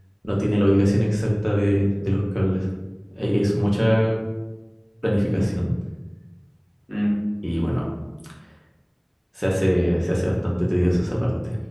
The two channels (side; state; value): both; identical; correlation 1.00